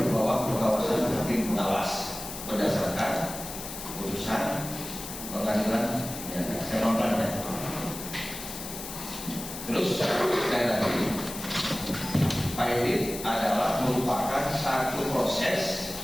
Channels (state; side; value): noise; left; hiss, 9 dB below the sound